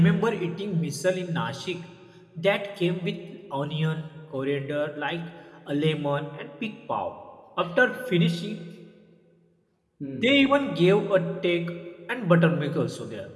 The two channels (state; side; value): identical; both; correlation 1.00